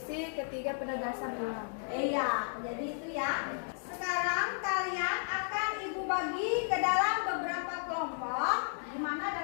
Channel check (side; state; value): right; silent; digital silence